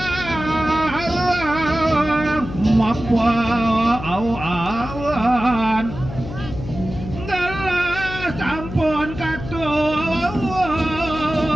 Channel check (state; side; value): noise; left; hum, 10 dB below the sound